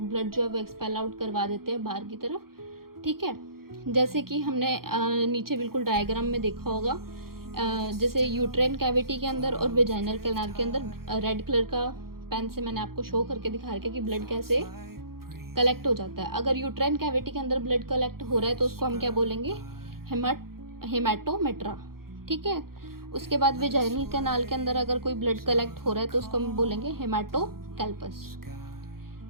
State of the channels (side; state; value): left; late; 0.93 ms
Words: ब्लड जो है वो एक्सपेल आउट करवा देते हैं बाहर की तरफ, ठीक है। जैसे कि हमने नीचे बिल्कुल डायग्राम में देखा होगा, जैसे यूट्राइन कैविटी के अंदर और वेजाइनल कैनाल के अंदर रेड कलर का पेन से मैंने आपको शो करके दिखा रखा है कि ब्लड कैसे कलेक्ट हो जाता है। अगर यूट्राइन कैविटी के अंदर ब्लड कलेक्ट हो रहा है तो उसको हम क्या बोलेंगे, हेमाटोमेट्रा, ठीक है। उसके बाद वेजाइनल कैनाल के अंदर अगर कोई ब्लड कलेक्ट हो रहा है तो उसको हम बोलेंगे हेमाटोकैल्पस।